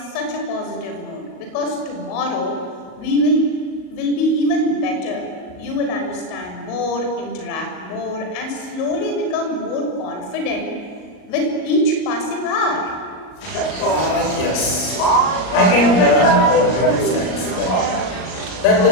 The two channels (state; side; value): late; right; 38 ms